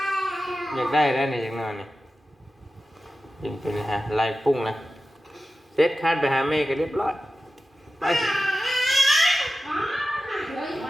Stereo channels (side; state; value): both; normal; correlation 0.94